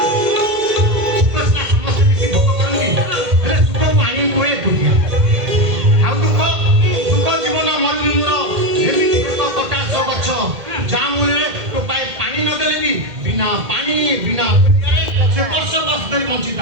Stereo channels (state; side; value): late; left; 2.1 ms